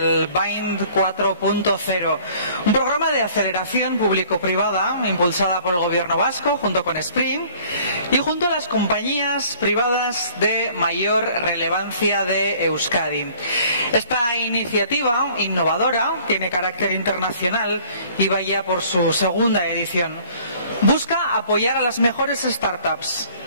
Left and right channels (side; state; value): both; inverted; correlation -0.54